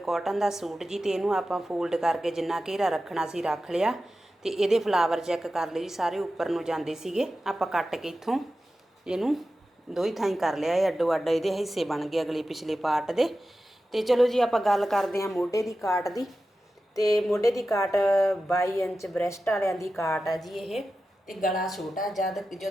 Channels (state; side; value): normal; both; correlation 0.93